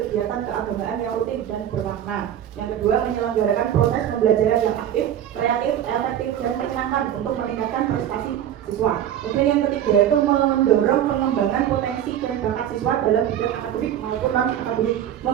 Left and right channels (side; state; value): left; quieter; 10.6 dB